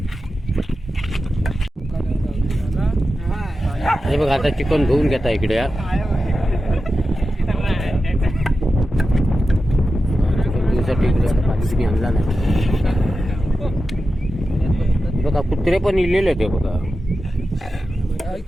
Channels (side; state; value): both; normal; correlation 0.92